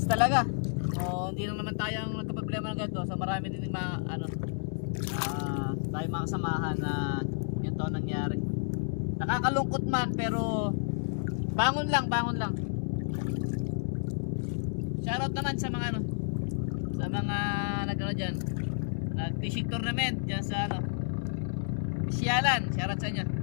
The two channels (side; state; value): right; silent; 57 dB below the other